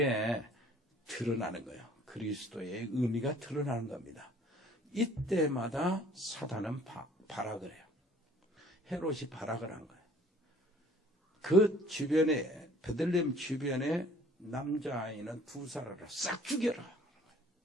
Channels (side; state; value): both; normal; correlation 0.54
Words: 드러나는 거예요. 그리스도의 의미가 드러나는 겁니다. 이때마다 사단은 발악을 해요. 헤롯이 발악을 한 거예요. 그 주변에, 베들레헴 주변에 남자아이는 두 사람을 싹 죽여라.